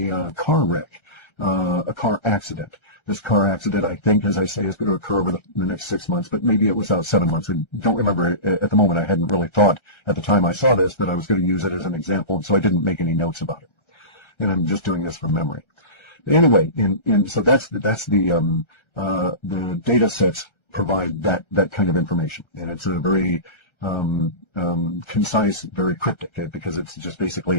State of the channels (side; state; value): right; late; 1.3 ms